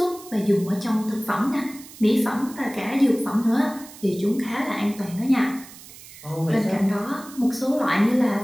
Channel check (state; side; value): noise; right; hiss, 18 dB below the sound